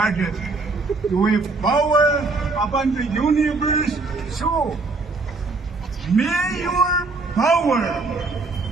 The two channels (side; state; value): left; quieter; 3.7 dB